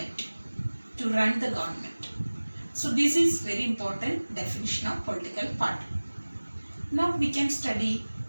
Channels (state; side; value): inverted; both; correlation -1.00